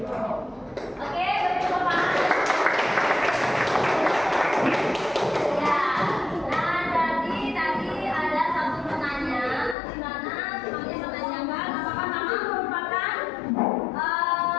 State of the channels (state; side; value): drops out; right; at 9.8 s